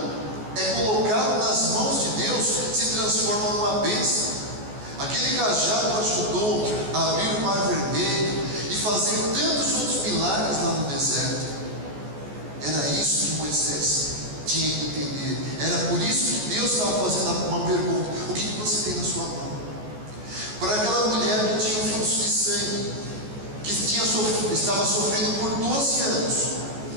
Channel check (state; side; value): late; left; 14 ms